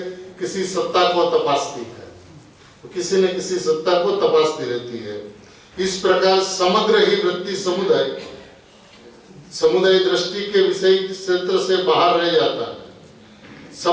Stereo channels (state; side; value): identical; both; correlation 1.00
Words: किसी सत्ता को तपासती है, तो किसी न किसी सत्ता को तपासती रहती है। इस प्रकार समग्र ही वृत्ति समुदाय दृष्टि के विषय क्षेत्र से बाहर रह जाता है।